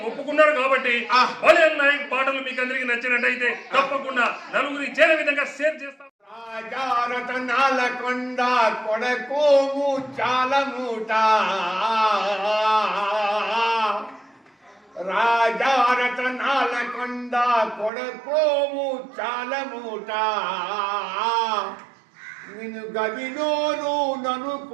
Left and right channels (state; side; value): drops out; left; at 17.9 s